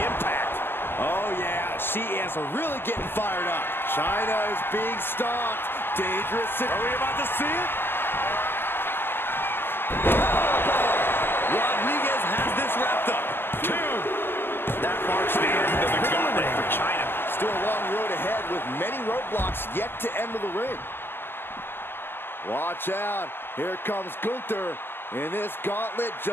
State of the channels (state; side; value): late; right; 0.10 ms